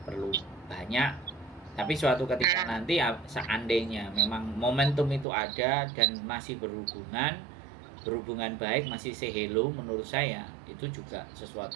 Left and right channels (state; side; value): drops out; left; at 5.2 s